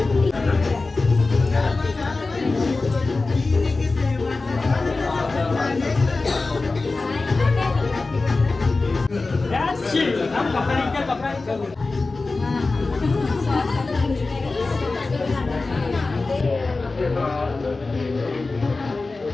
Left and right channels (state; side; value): quieter; right; 3.6 dB